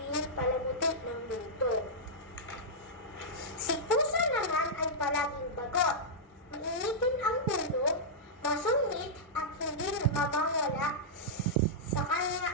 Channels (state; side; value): normal; both; correlation -0.10